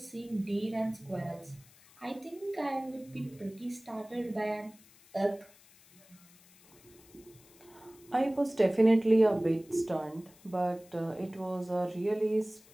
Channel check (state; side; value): noise; left; hiss, 26 dB below the sound